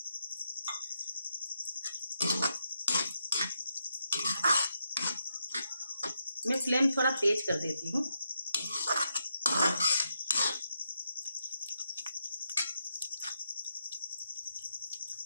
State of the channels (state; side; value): inverted; both; correlation -0.82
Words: मैं फ्लेम थोड़ा तेज कर देती हूँ।